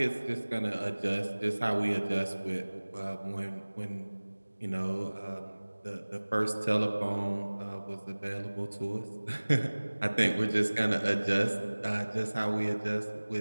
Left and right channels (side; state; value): both; inverted; correlation -1.00